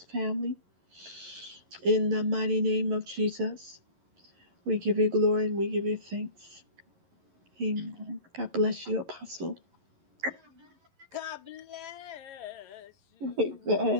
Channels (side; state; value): left; late; 11 ms